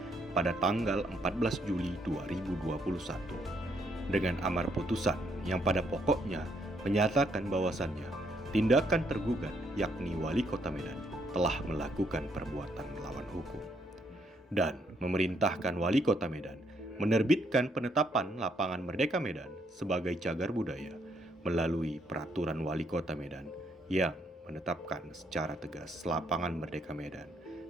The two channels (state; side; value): normal; both; correlation 0.73